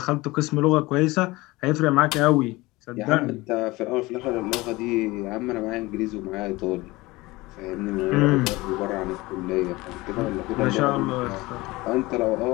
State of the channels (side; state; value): right; quieter; 21.1 dB